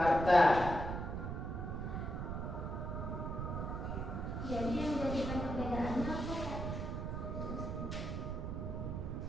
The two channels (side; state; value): right; noise; rumble, 3 dB below the sound